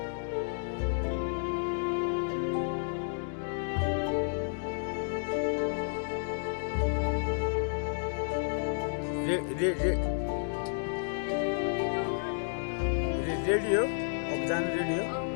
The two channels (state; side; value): silent; right; digital silence